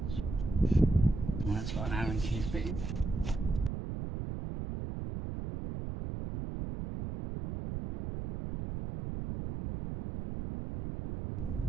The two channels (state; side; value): noise; right; rumble, 5 dB below the sound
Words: And that's got an Allen key fitting.